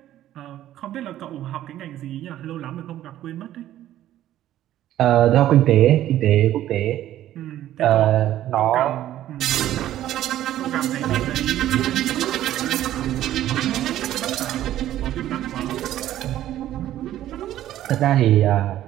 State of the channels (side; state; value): left; quieter; 12.9 dB